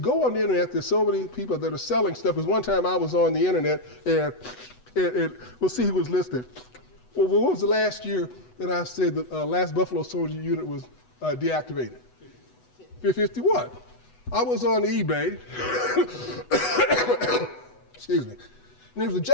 on the internet, there's so many people that are selling stuff. Because one time I was on the internet and we'll see who was listed. Well, what was the last year that I said the last Buffalo Soldier unit was deactivated? 51. I was on eBay, excuse me, and there was a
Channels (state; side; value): late; right; 8.1 ms